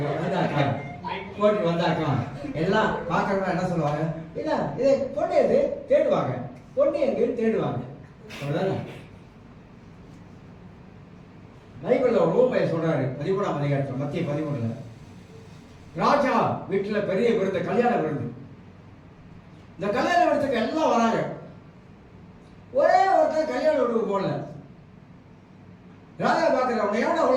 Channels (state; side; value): identical; both; correlation 1.00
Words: வந்தாக்கா எல்லாம் பாக்குறவங்க என்ன சொல்லுவாங்க, இல்ல இது பொண்ணு எது தேடுவாங்க, பொண்ணு எங்கன்னு தேடுவாங்க. அவ்வளவுதானே. பைபிள்ல ஒரு ஊமையை சொல்றாரு 13ஆம் அதிகாரத்துல, மத்திய 13. ராஜா வீட்டுல பெரிய விருந்து, கல்யாண விருந்து. இந்த கல்யாண விருந்துக்கு எல்லாம் வராங்க. ஒரே ஒருத்தர் கல்யாண விருந்துக்கு போடல. ராஜா பாக்குற உன்னை எவன